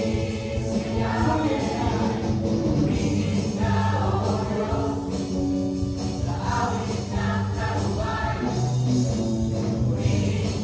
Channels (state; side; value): identical; both; correlation 1.00